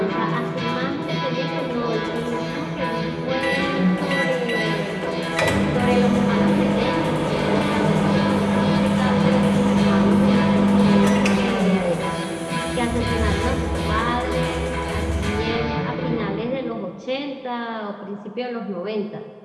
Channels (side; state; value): both; identical; correlation 1.00